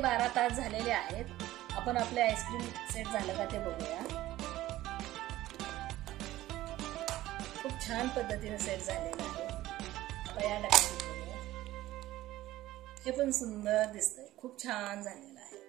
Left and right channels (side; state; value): left; quieter; 15.7 dB